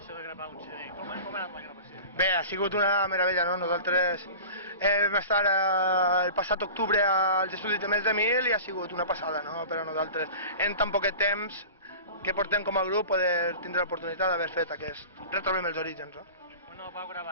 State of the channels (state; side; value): inverted; both; correlation -0.37